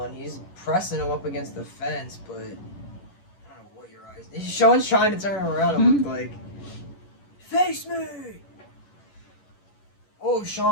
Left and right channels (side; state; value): right; late; 11 ms